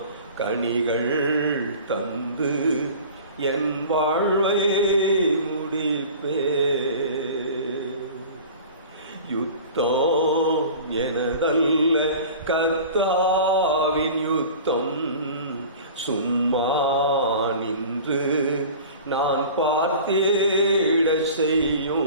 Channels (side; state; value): both; inverted; correlation -0.41